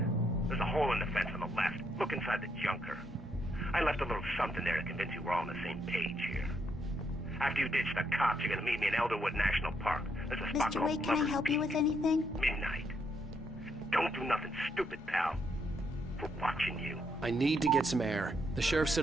There's a hole in the fence on the left. Look inside the junker. I left a little something there to convince you we're all on the same page here. After you ditch the cops, you're gonna meet me in Elderwood National Park. There's a spot Mr. called Wake, can I Lover's help you Peak. with anything? Midnight. Don't do nothing stupid, pal. We're watching you. I need to get some air. The sheriff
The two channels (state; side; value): normal; both; correlation 0.76